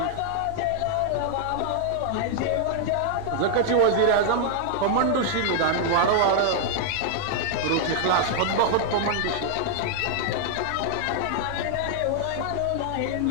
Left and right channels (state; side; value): different; both; correlation 0.00